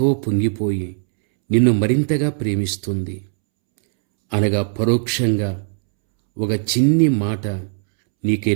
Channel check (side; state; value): left; silent; 66 dB below the other